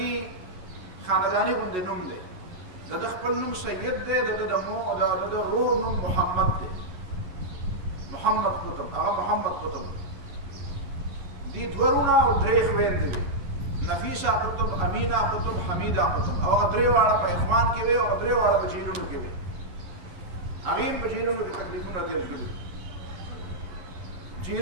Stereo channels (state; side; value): late; left; 11 ms